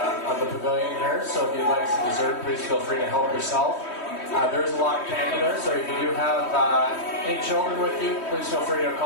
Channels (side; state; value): right; late; 3.1 ms